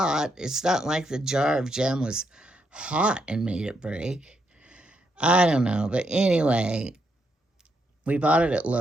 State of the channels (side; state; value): both; normal; correlation 0.79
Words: It's not like the jar of jam was hot and made it break. I don't know, but anyway, we bought it at